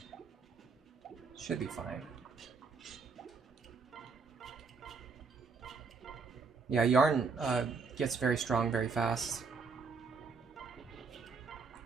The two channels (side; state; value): left; quieter; 4.9 dB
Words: Should be fine. Yeah, Yarn gets very strong very fast.